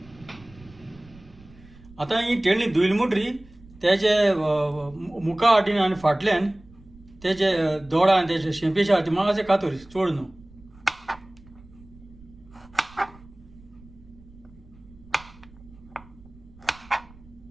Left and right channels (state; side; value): noise; right; rumble, 23 dB below the sound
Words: आतां ही टेंडली धुयली म्हणटरी तेजे मुखा वाटेन आनी फाटल्यान तेजे दोडा आनी तेजे शेंपेच्या हाती मातशें कातर चड न्हू.